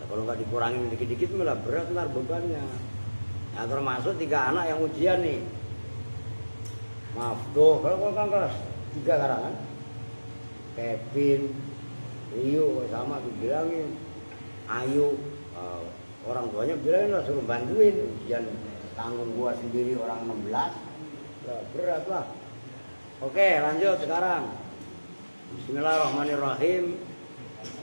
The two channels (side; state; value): both; inverted; correlation -1.00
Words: kalau nggak dikurangin dikit-dikit malah berat ntar bebannya. Nah termasuk 3 anak yang ujian nih. Maaf tuh, kalau kan kelas 3 sekarang kan. Kevin, Rio sama dibilangin. Ayu, orang tuanya bilangin lah suruh bantuin. Ujian tanggung gua sendiri orang 16. Lah, berat lah. Oke lanjut sekarang. Bismillahirrahmanirrahim.